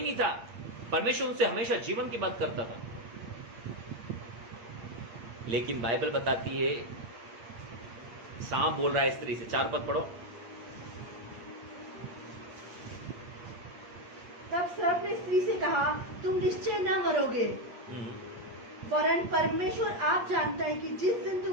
नहीं था। परमेश्वर उनसे हमेशा जीवन की बात करता था। लेकिन बाइबल बताती है, सांप बोल रहा है स्त्री से। 4 पद पढ़ो। तब सर्प ने स्त्री से कहा, तुम निश्चय न मरोगे, वरन परमेश्वर आप जानता है कि जिस दिन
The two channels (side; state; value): left; late; 8.6 ms